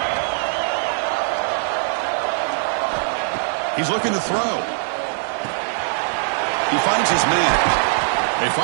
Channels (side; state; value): left; silent; 65 dB below the other